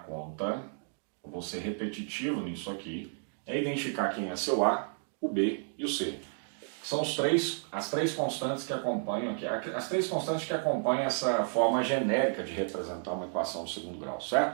eu vou ser repetitivo nisso aqui, é identificar quem é seu A, o B e o C. São as três constantes que acompanham aqui, as três constantes que acompanham essa forma genérica de representar uma equação de segundo grau,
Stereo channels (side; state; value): left; silent; 56 dB below the other